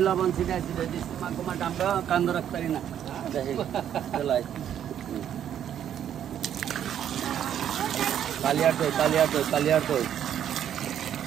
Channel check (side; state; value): left; quieter; 9.9 dB